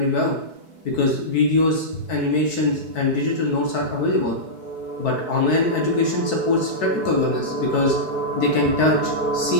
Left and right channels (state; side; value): late; right; 4.6 ms